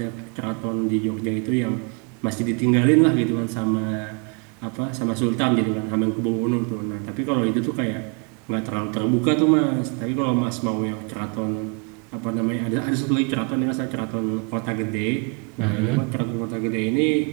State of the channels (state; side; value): quieter; left; 35.4 dB